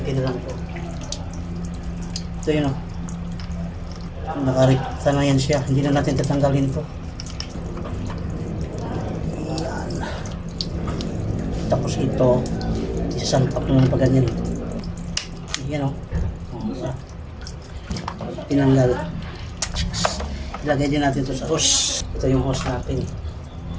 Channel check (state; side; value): identical; both; correlation 1.00